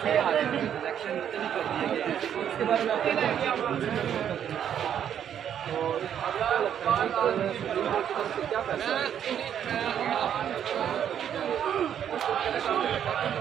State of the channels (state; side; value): quieter; left; 9.3 dB